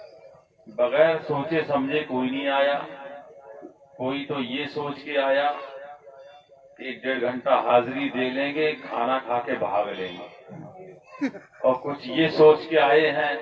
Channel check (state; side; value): identical; both; correlation 1.00